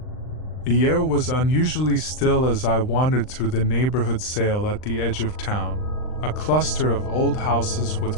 The air was unusually still as I wandered through the neighborhood sale at the edge of town, a cluster of old houses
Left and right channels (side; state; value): right; late; 39 ms